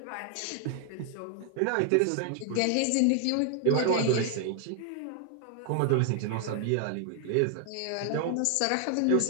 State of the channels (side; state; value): both; different; correlation 0.00